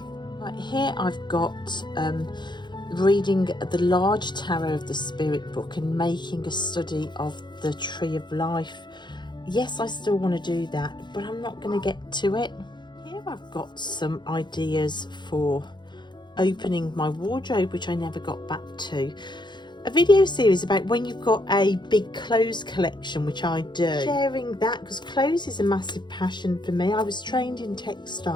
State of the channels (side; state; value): right; late; 0.22 ms